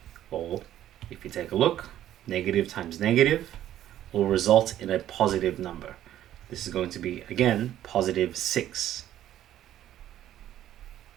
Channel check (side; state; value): left; quieter; 12.2 dB